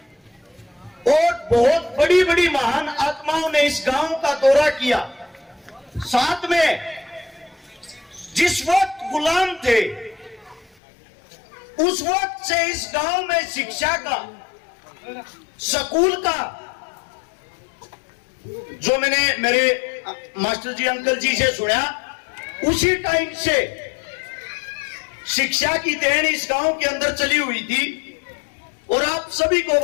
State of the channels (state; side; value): drops out; right; at 10.8 s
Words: और बहुत बड़ी बड़ी महान आत्माओं ने इस गांव का दौरा किया। साथ में जिस वक्त गुलाम थे उस वक्त से इस गांव में शिक्षा का, स्कूल का, जो मैंने मेरे मास्टर जी अंकल जी से सुना, उसी टाइम से शिक्षा की देन इस गांव के अंदर चली हुई थी। और आप सभी को